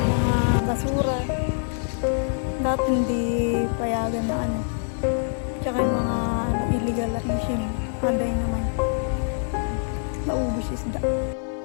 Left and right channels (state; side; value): silent; right; digital silence